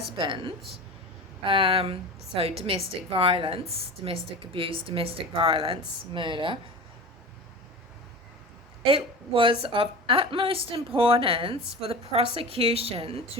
so domestic violence, domestic abuse, domestic violence, murder, it was of utmost importance for the prosecution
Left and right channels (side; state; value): both; normal; correlation 0.32